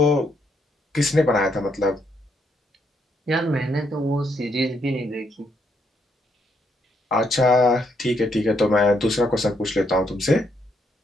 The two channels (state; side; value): normal; both; correlation 0.75